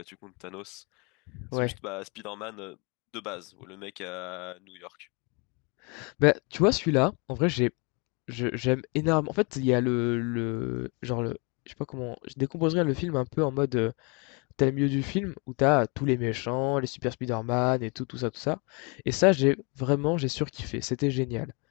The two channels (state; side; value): quieter; right; 31.6 dB